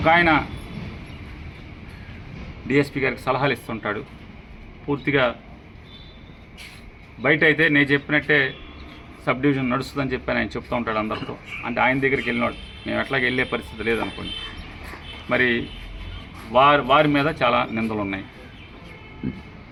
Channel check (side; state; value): both; identical; correlation 1.00